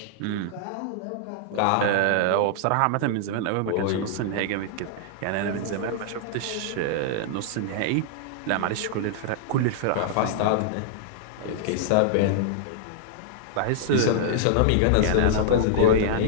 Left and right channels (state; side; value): different; both; correlation -0.01